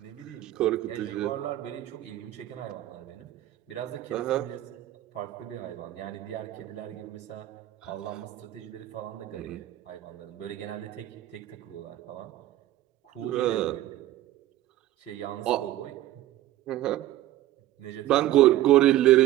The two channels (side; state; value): left; quieter; 14.4 dB